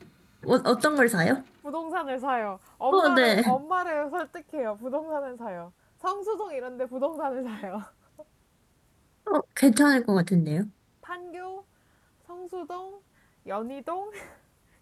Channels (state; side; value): identical; both; correlation 1.00